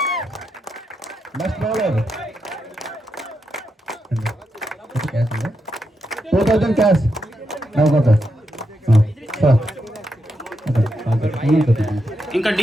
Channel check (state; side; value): normal; both; correlation 0.84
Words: Best bowler 2000 cash. ఇంకా